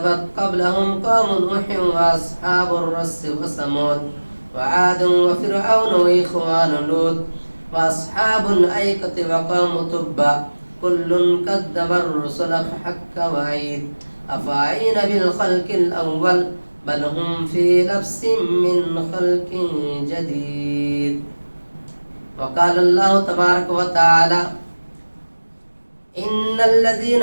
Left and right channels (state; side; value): inverted; both; correlation -1.00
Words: قبلهم قوم نوح وأصحاب الرس وثمود وعاد وفرعون وإخوان لوط وأصحاب الأيكة وقوم تبع كل كذب الرسل فحق وعيد أفعين بالخلق الأول بل هم في لبس من خلق جديد وقال الله تبارك وتعالى إن